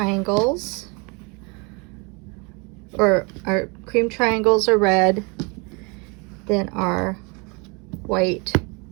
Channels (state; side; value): quieter; left; 30.5 dB